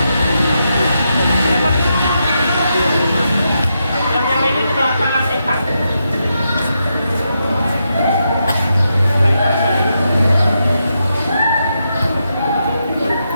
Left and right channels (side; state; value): both; inverted; correlation -0.84